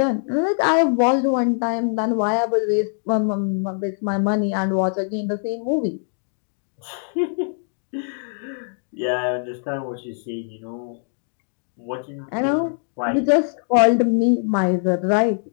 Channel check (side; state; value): right; silent; digital silence